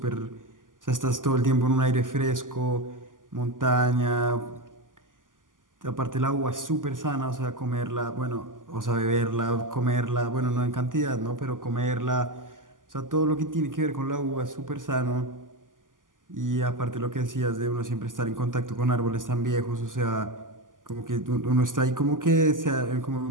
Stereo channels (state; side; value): late; left; 0.88 ms